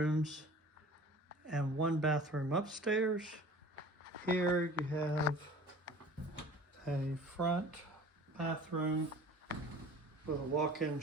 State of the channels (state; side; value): normal; both; correlation 0.44